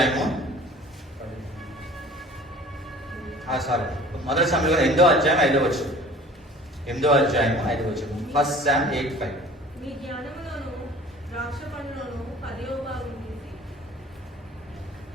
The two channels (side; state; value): both; normal; correlation 0.46